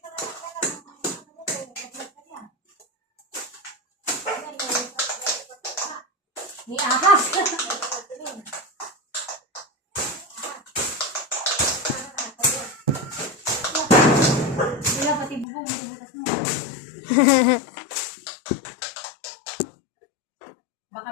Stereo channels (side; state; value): right; drops out; at 15.5 s